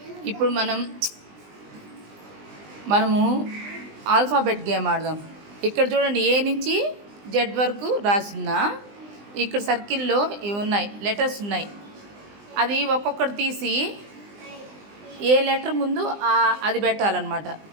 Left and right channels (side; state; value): left; late; 20 ms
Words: ఇప్పుడు మనము alphabet game ఆడదాం. ఇక్కడ చూడండి, ఏ నుంచి జెడ్ వరకు రాసిందా. ఇక్కడ సర్కిల్లో ఇవి ఉన్నాయి, లెటర్స్ ఉన్నాయి. అది ఒక్కొక్కటి తీసి ఏ లెటర్ ముందు అది పెట్టాలన్నమాట.